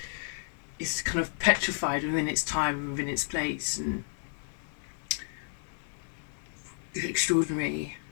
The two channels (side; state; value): right; silent; digital silence